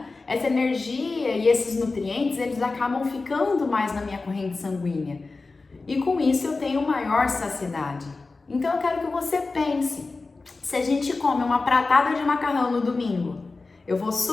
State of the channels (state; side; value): quieter; right; 3.7 dB